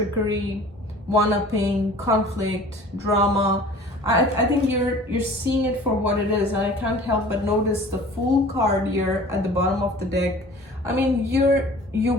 one-upping, conflict, drama. I think you're seeing it for what it is, and I can't help but notice the Fool card here at the bottom of the deck. I mean, you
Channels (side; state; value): both; normal; correlation 0.45